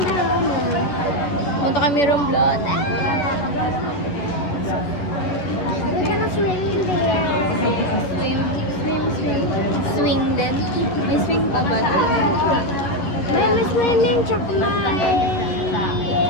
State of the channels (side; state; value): right; late; 11 ms